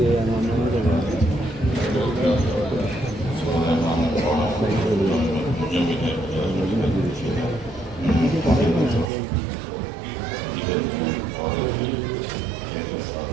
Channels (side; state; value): left; drops out; at 9.1 s